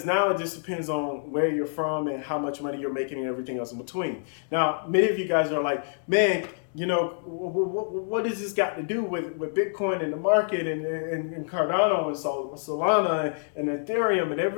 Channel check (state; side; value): silent; right; digital silence